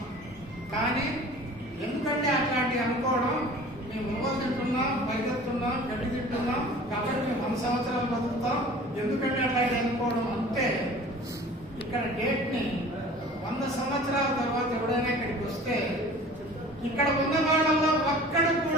కానీ ఎందుకంటే అట్లాంటివి అనుకోవడం, మేము ఉవ్వలు తింటున్నాం, పరిగెత్తున్నాం, గడ్డి తింటున్నాం కాబట్టి మేము 100 సంవత్సరాలు బతుకుతాం, ఎందుకంటే అట్లాంటి అనుకోవడం అంటే ఇక్కడ డేట్ ని 100 సంవత్సరాల తర్వాత ఎవడైనా ఇక్కడికి వస్తే ఇక్కడ ఉన్న వాళ్ళలో ఒక్కడు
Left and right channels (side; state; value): both; normal; correlation 0.44